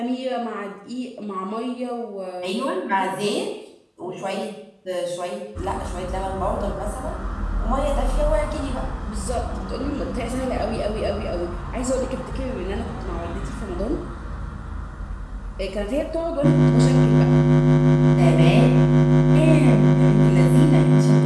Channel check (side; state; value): both; identical; correlation 1.00